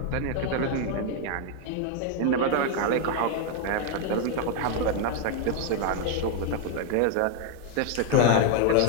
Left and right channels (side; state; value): both; different; correlation 0.00